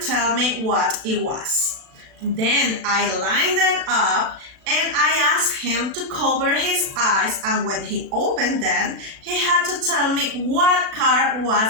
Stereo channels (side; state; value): left; late; 36 ms